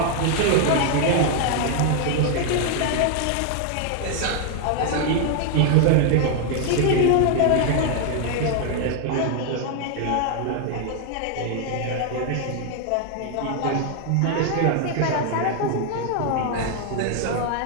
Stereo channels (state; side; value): different; both; correlation 0.00